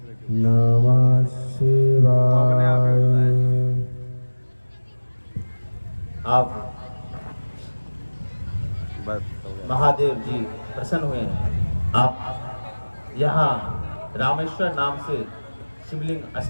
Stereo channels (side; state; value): both; inverted; correlation -1.00